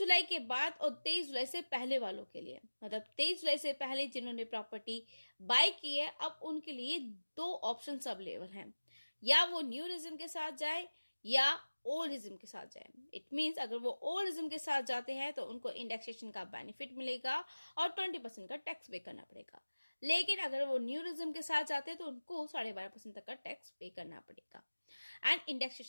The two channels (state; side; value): inverted; both; correlation -1.00